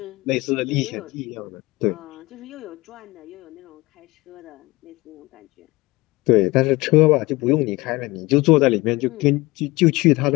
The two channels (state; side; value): quieter; right; 22.0 dB